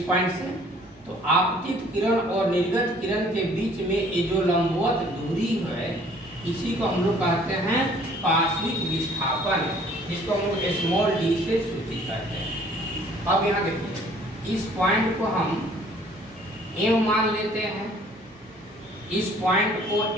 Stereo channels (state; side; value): normal; both; correlation 0.56